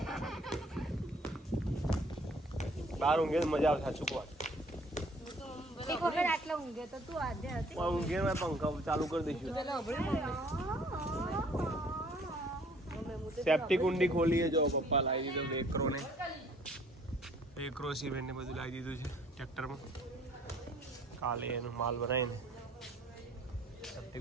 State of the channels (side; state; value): both; normal; correlation 0.57